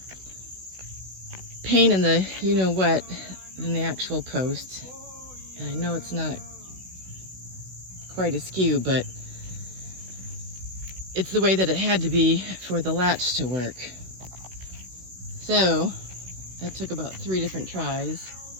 pain in the you-know-what than the actual post. And I know it's not quite askew, but it's the way that it had to be for the latch to work. So that took about 3 different tries.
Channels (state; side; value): late; left; 16 ms